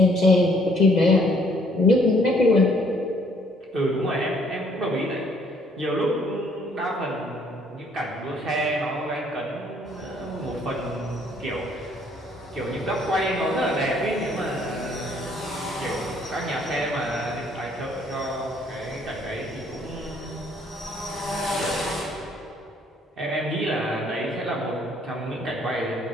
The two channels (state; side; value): normal; both; correlation 0.64